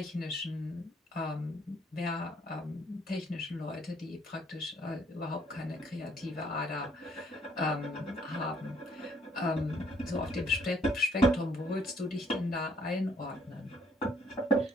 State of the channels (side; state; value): both; normal; correlation 0.66